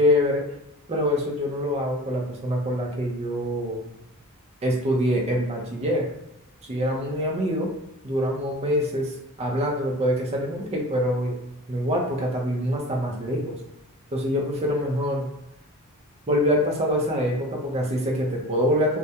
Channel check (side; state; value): both; normal; correlation 0.39